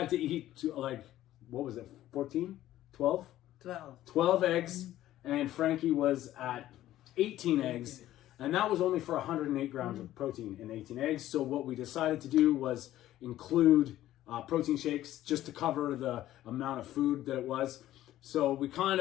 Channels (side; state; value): right; quieter; 13.9 dB